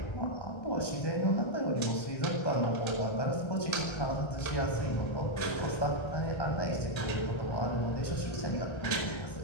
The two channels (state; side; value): late; right; 1.3 ms